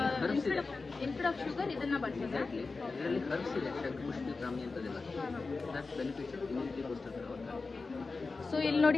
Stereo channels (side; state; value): right; quieter; 4.0 dB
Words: ಇನ್ಸ್ಟೆಡ್ ಆಫ್ ಶುಗರ್ ಇದನ್ನ ಬಳಸೋದಾ? ಇದರಲ್ಲಿ ಹರ್ಬ್ಸ್ ಇದೆ, ಶಂಖಪುಷ್ಪಿ, ಬ್ರಾಹ್ಮಿ ಅಂತದೆಲ್ಲ. ದಟ್ ಬೆನಿಫಿಟ್ಸ್ ಇಮ್ಯುನಿಟಿಗೋಸ್ಕರ. ಸೊ ಇಲ್ಲಿ